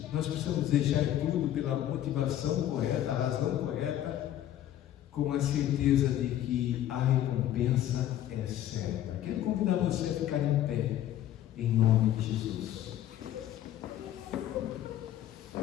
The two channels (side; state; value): right; quieter; 12.1 dB